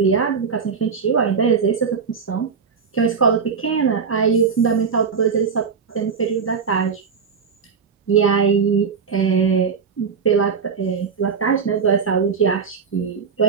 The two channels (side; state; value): left; quieter; 6.0 dB